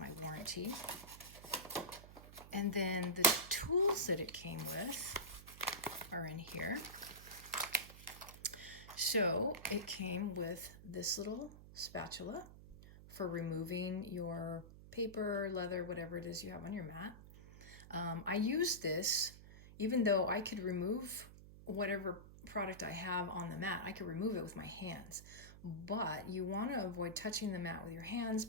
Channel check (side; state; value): right; noise; hum, 16 dB below the sound